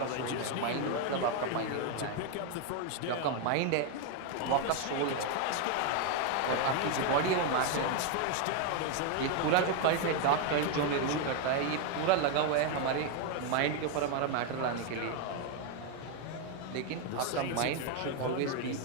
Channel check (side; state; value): both; different; correlation 0.01